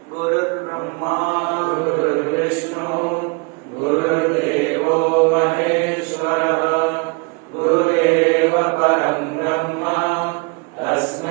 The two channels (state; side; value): quieter; left; 31.0 dB